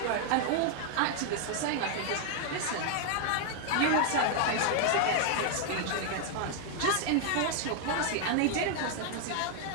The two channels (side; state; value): both; different; correlation 0.00